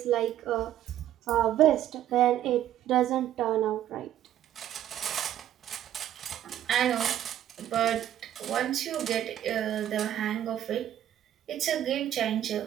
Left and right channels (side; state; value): left; quieter; 11.7 dB